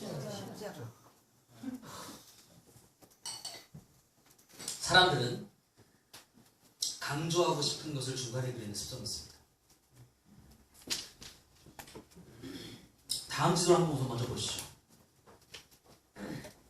사람들은 강조하고 싶은 것을 중간에 그리는 습성이 있습니다. 다음 지도를 한번 우선 먼저 보시죠.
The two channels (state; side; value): identical; both; correlation 1.00